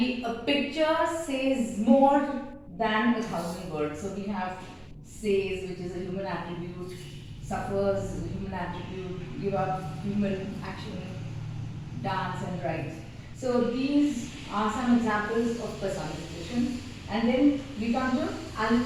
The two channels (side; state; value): both; identical; correlation 1.00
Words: a picture says more than 1,000 words. So we have says, which is a human attribute, suffers is a human attribute, give up, human action, dance and write. So these are some examples of personification. And then we come to